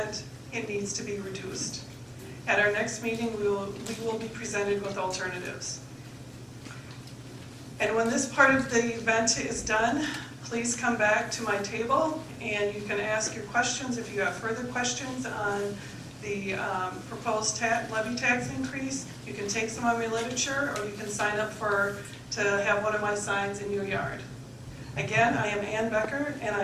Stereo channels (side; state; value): both; identical; correlation 1.00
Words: It needs to be reduced. At our next meeting, we will be presented with alternatives. And when this part of the event is done, please come back to my table and you can ask your questions if you have further questions on the proposed levy tax increase. You can take some of my literature or you can sign up to have one of my signs in your yard. Again, I am Ann Becker and